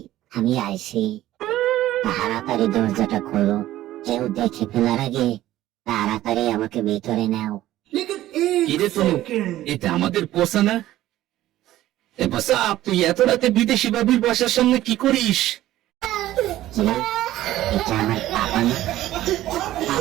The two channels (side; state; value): left; quieter; 14.6 dB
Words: আমি আইছি, তাড়াতাড়ি দরজাটা খোলো, কেউ দেখে ফেলার আগে তাড়াতাড়ি আমাকে ভিতরে নাও। কিরে তনু, এটা আমাদের পোষা না? এ পোষা, তুই এত রাতে বিদেশি বাবির বাসার সামনে কি করিস? কি? এটা আমার পাপা না?